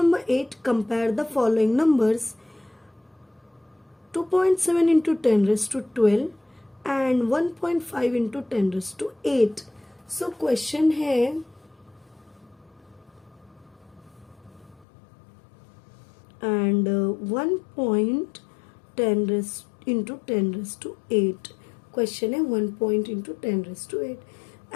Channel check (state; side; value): drops out; right; at 14.9 s